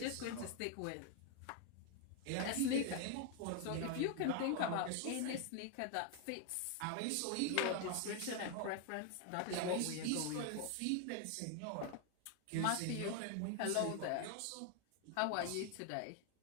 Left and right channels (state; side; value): different; both; correlation 0.00